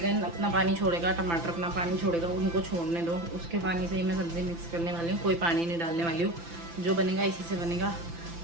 अपना पानी छोड़ेगा, टमाटर अपना पानी छोड़ेगा, उनको छोड़ने दो। उसके पानी से ही मैं सब्ज़ी मिक्स करने वाली हूँ, कोई पानी नहीं डालने वाली हूँ। जो बनेगा इसी से बनेगा।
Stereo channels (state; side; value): late; left; 5.9 ms